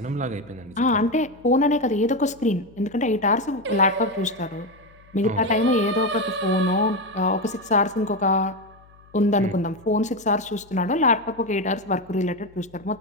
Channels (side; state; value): left; noise; hum, 27 dB below the sound